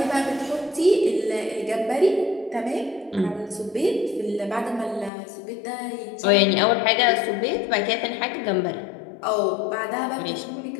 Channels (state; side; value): drops out; right; at 5.1 s